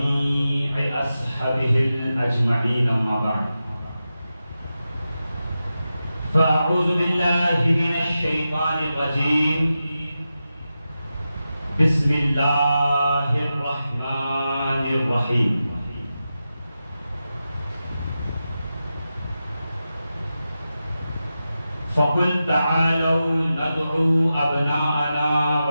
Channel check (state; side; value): inverted; both; correlation -0.92